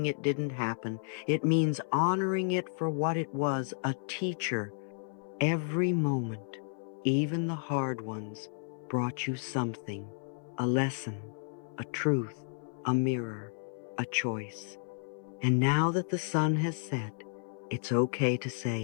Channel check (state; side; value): silent; right; 56 dB below the other